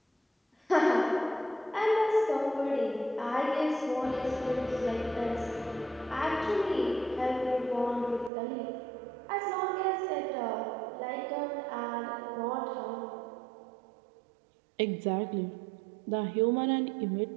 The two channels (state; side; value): drops out; left; at 8.3 s